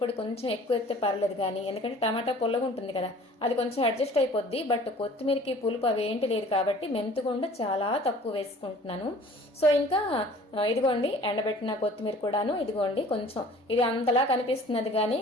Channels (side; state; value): both; normal; correlation 0.49